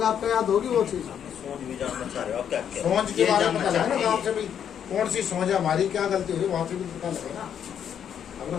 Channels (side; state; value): right; quieter; 8.7 dB